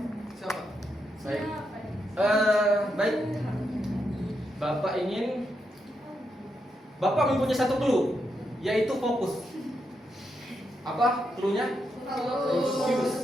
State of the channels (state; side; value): normal; both; correlation 0.82